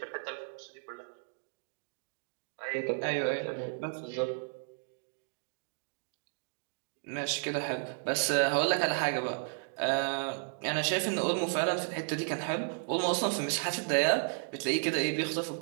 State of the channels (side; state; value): left; silent; 55 dB below the other